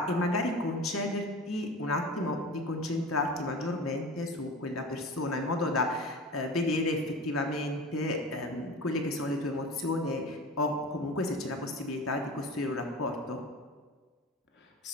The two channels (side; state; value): both; normal; correlation 0.34